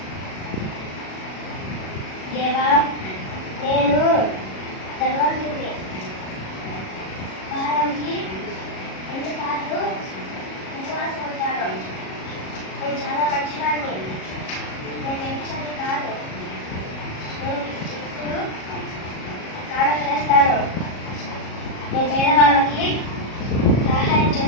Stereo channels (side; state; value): right; late; 37 ms